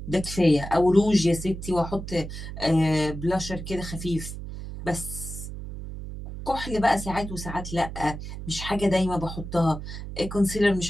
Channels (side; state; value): right; noise; hum, 9 dB below the sound